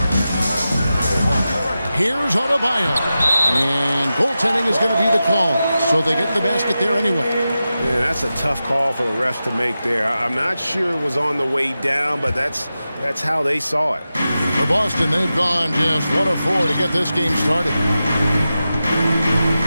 Here's Adebayo. And goaltending is going to be the call. So they get the basket there anyway. Yeah, that's a tough call for the refs to make there. I'm not sure it was on the way down, but that's how they saw it. For Boston, they've gone just 1 of 4 to get this game started.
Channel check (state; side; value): inverted; both; correlation -0.92